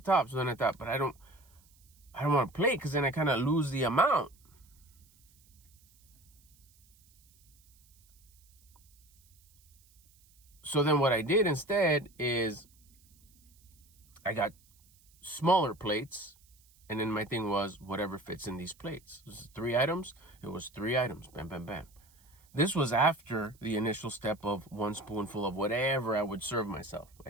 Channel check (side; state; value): right; noise; hiss, 30 dB below the sound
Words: top. So then I thought, but I don't want to plate because then I kind of lose the amount. So then what I did instead is I got smaller plates, and then my thing was whatever fits in these plates. This is 3 items. It was 3 items. Bam, bam, bam. This was after the initial step of one spoonful of whatever I would serve myself.